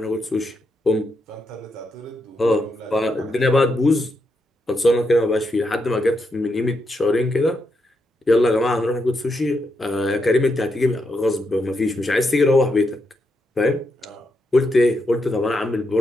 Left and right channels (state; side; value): normal; both; correlation 0.82